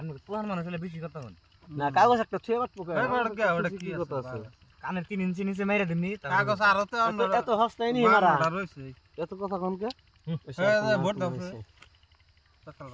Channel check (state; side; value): identical; both; correlation 1.00